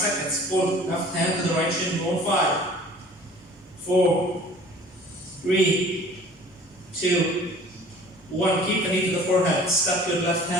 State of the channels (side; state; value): both; normal; correlation 0.48